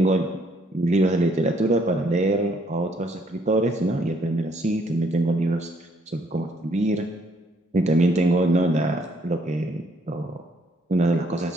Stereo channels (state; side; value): normal; both; correlation 0.67